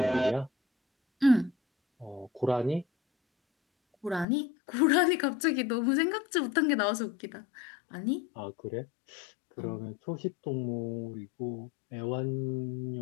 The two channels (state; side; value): drops out; right; at 4.2 s